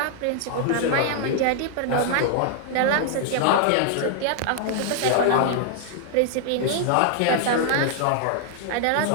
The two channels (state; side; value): different; both; correlation -0.01